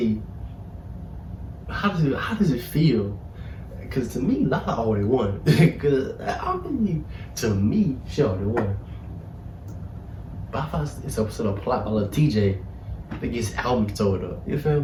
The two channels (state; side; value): identical; both; correlation 1.00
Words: how does it feel? Cause to me, Lala already won. Cause to me, she already won. But I thought it's a plot by Lil TJ that gets album sold up. You